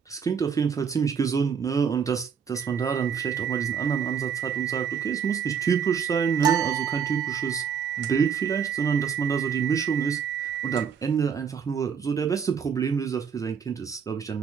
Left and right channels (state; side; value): quieter; left; 7.1 dB